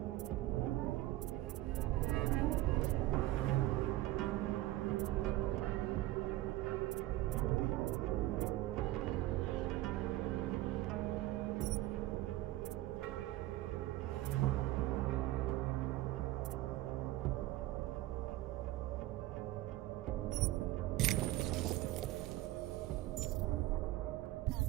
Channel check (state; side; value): quieter; left; 16.4 dB